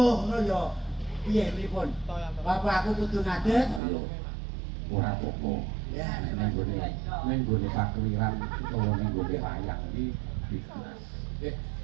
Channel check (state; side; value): drops out; left; at 3.8 s